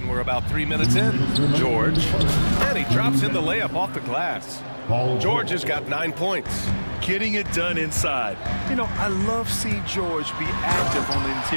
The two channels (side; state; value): both; inverted; correlation -1.00